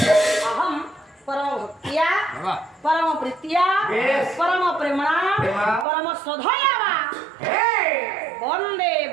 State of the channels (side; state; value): left; drops out; at 5.9 s